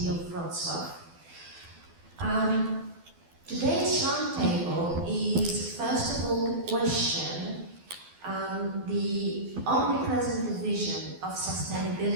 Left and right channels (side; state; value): left; late; 12 ms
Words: of Wroclaw. Today's Roundtable is first of all to question the omnipresent division of